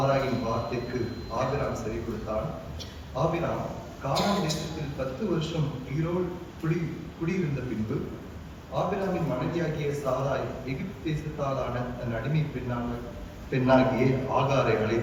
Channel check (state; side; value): identical; both; correlation 1.00